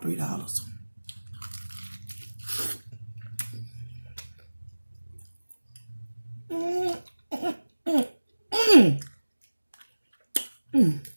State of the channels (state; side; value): inverted; both; correlation -1.00